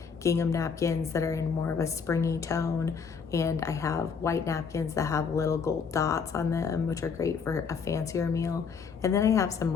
gingham napkins that are in more of a springy tone, and I have white napkins that have little gold dots on them, which are great for a fancier meal. And then I have some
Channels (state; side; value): quieter; right; 5.9 dB